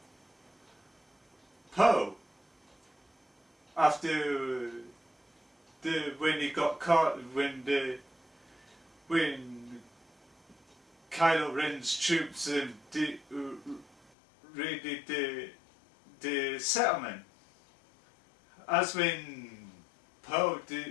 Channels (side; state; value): right; drops out; at 14.1 s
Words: Poe after when he got caught, when Kylo Ren's troops raided the settlement. As when Poe